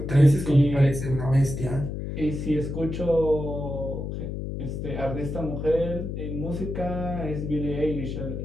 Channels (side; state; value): left; noise; hum, 5 dB below the sound